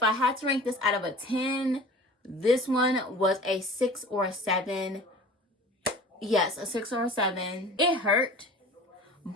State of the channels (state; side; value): normal; both; correlation 0.41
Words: I had to rank this out of a 10, this one was a 6 or a 7. Yes, a 6 or a 7. It hurt,